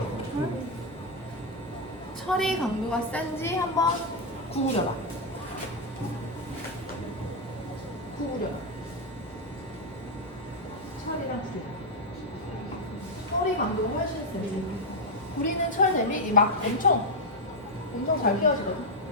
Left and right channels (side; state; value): both; normal; correlation 0.02